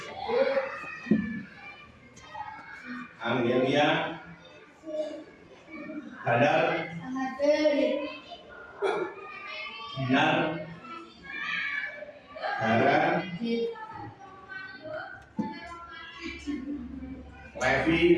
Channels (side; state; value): both; identical; correlation 1.00